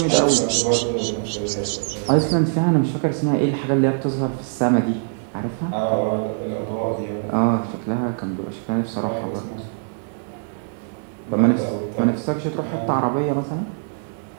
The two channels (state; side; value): silent; left; 64 dB below the other